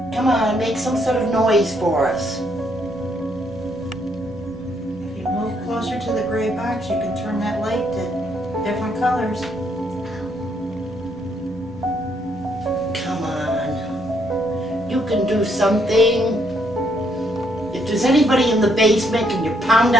Come on, make some sort of noise for us. If you move closer to the gray box, you can turn that light to different colors. Come on. You can do something. If there's anybody in the basement, can you pound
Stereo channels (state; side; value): normal; both; correlation 0.72